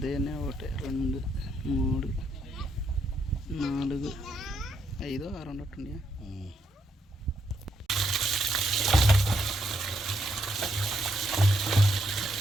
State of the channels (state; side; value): normal; both; correlation 0.77